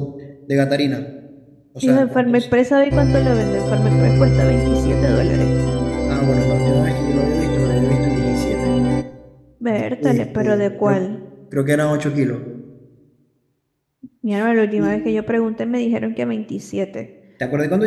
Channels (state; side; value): identical; both; correlation 1.00